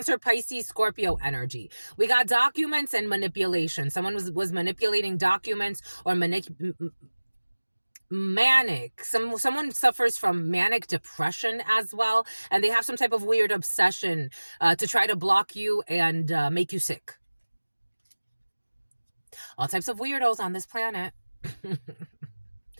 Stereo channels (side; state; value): both; inverted; correlation -1.00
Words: Pisces, Scorpio energy. We got documents and manipulation. Someone was manipulating documents or manic. Someone suffers from manic depression as well, and they have some type of weird obsession to try to block you and make you sick. All types of weirdos on this planet.